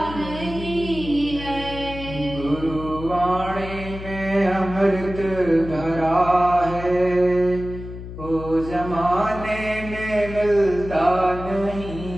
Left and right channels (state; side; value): noise; left; hum, 11 dB below the sound